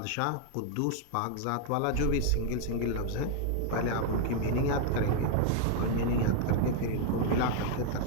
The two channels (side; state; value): both; different; correlation 0.00